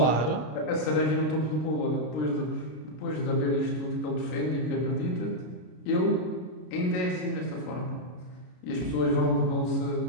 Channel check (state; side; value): late; right; 33 ms